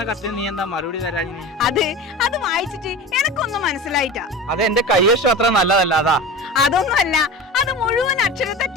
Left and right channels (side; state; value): both; normal; correlation 0.31